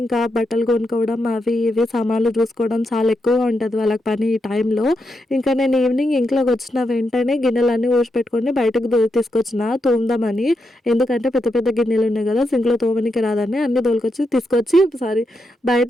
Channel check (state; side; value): normal; both; correlation 0.84